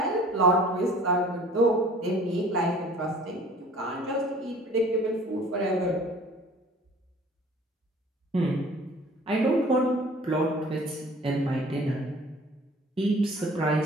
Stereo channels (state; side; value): normal; both; correlation 0.49